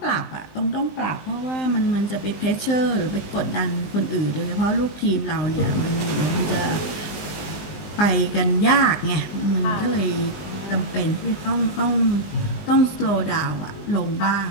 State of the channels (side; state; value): right; late; 19 ms